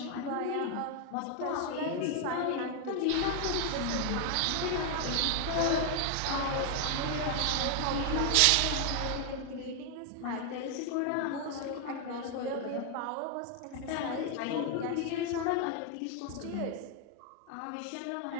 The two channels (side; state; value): both; different; correlation 0.00